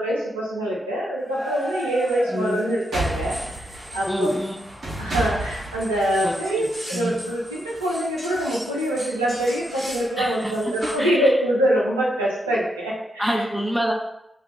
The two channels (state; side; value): normal; both; correlation 0.80